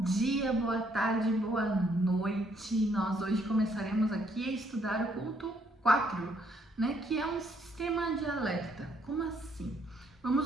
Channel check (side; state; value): both; normal; correlation 0.69